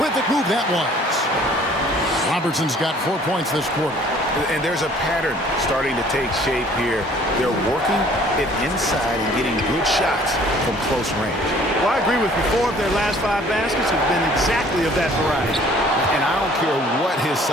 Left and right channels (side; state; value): both; normal; correlation 0.55